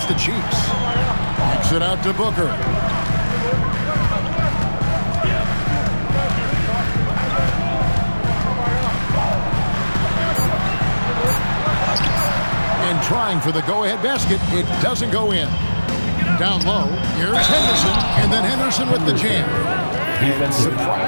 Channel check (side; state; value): both; inverted; correlation -1.00